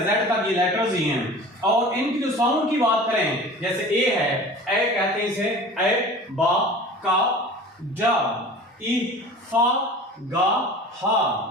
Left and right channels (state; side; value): normal; both; correlation 0.40